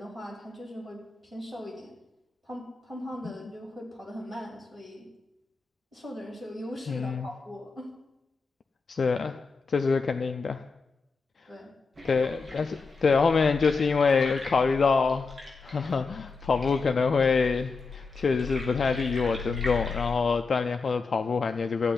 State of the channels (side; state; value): right; quieter; 4.5 dB